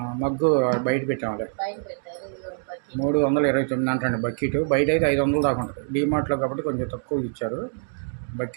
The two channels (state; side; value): silent; left; digital silence